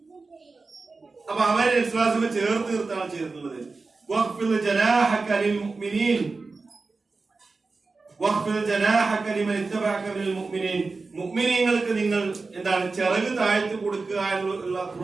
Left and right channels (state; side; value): quieter; left; 4.0 dB